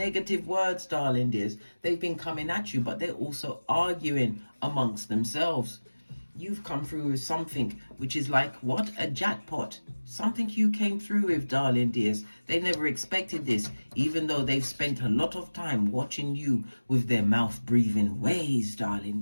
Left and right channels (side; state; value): both; inverted; correlation -1.00